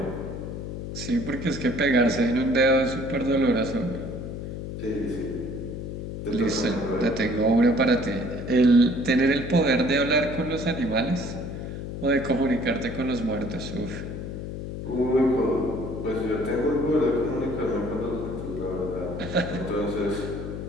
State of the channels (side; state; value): left; noise; hum, 7 dB below the sound